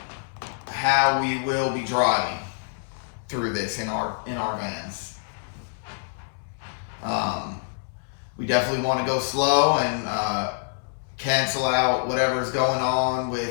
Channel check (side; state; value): right; silent; 61 dB below the other